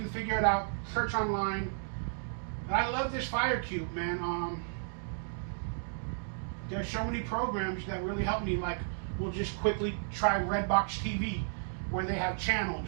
figure it out. Search online. But I love this Fire Cube, man. There's so many programs that really help me. Like, we'll just quickly try Redbox TV, where they have channels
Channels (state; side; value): silent; left; digital silence